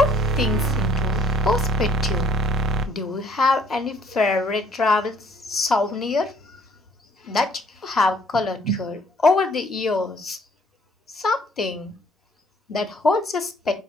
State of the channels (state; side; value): normal; both; correlation 0.62